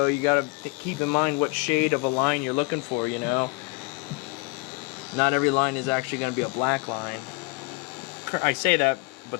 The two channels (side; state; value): right; quieter; 28.0 dB